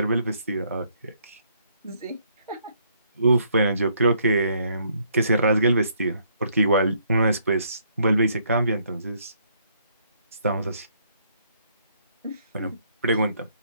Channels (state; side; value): inverted; both; correlation -0.69